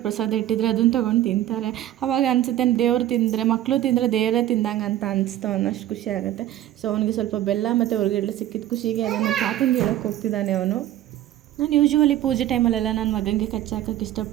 ಪ್ರಸಾದ ಇಟ್ಟಿದ್ರೆ ಅದನ್ನು ತೊಗೊಂಡು ತಿಂತಾರೆ. ಅವಾಗ ಅನಿಸುತ್ತೆ ದೇವ್ರು ತಿಂದರೆ, ಮಕ್ಕಳು ತಿಂದರೆ ದೇವರೇ ತಿಂದಂಗೆ ಅಂತ ಅನಿಸ್ತು ಅನ್ನೋಷ್ಟು ಖುಷಿ ಆಗುತ್ತೆ. ಸೊ ಅವನಿಗೆ ಸ್ವಲ್ಪ ಬೆಲ್ಲ ಮತ್ತು ಹುರ್ಗಡ್ಲೆ ಸಿಕ್ಕಿದ ಖುಷಿಗೆ ಅದನ್ನು ತಾತಂಗೆ ಹೇಳೋಕ್ಕೆ ಹೋಗ್ತಿದ್ದಾನೆ ಅವನು. ನಾನು ಯೂಶ್ವಲಿ ಪೂಜೆ ಟೈಮಲ್ಲೆಲ್ಲ ನನ್ನ ಮಗನಿಗೆ ಕಚ್ಚೆ ಹಾಕೋಕ್ಕೆ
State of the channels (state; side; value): quieter; left; 13.0 dB